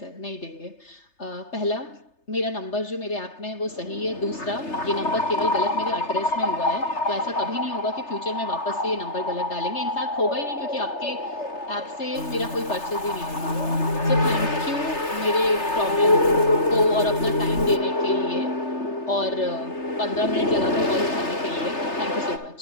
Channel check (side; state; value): right; late; 3.3 ms